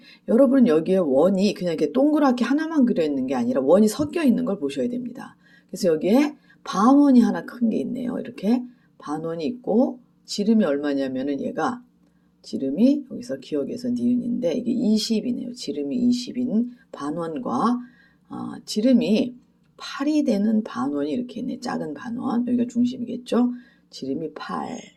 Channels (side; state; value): both; identical; correlation 1.00